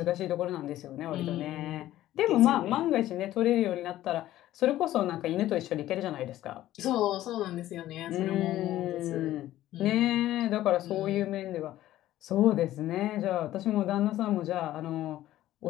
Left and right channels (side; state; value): right; quieter; 14.2 dB